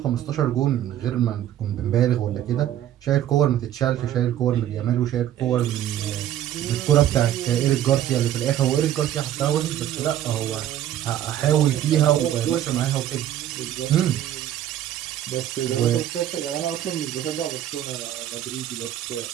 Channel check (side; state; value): left; quieter; 11.7 dB